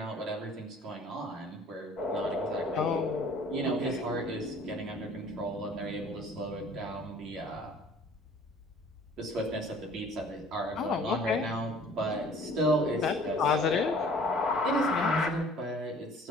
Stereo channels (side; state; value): both; normal; correlation 0.52